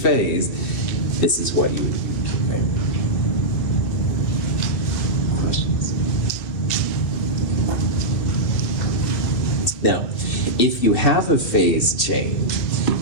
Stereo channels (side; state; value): right; late; 2.6 ms